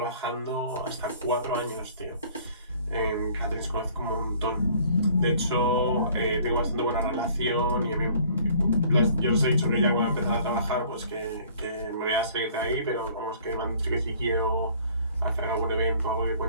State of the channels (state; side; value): inverted; both; correlation -0.54